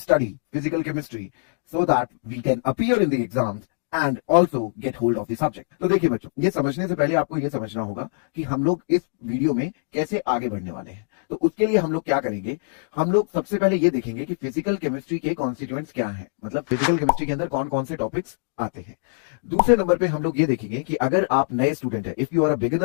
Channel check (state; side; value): silent; right; digital silence